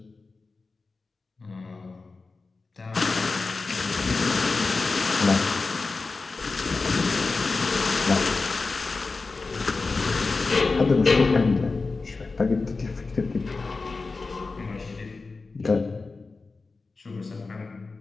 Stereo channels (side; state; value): right; quieter; 4.0 dB